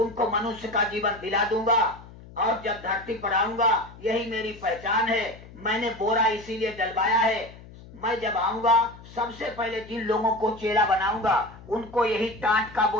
मनुष्य का जीवन दिला दूंगा, और जब धरती पर आऊंगा यही मेरी पहचान है। मैंने बोरा इसीलिए डलवाया है, मैं जब आऊंगा सबसे पहले जिन लोगों को चेला बनाऊंगा उनको यही टाट का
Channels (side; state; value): left; noise; hum, 19 dB below the sound